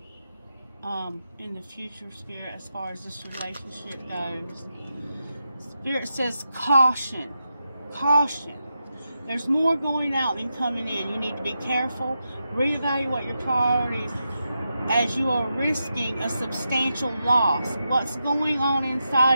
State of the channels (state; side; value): inverted; both; correlation -0.87